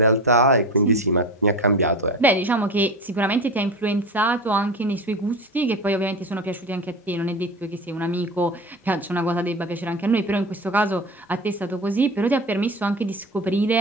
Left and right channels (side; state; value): both; normal; correlation 0.29